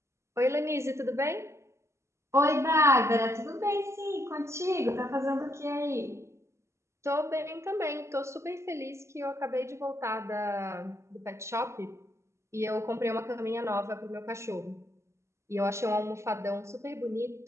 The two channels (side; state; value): left; late; 0.13 ms